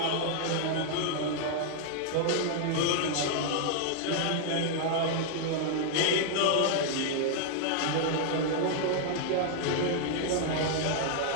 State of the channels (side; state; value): both; different; correlation 0.00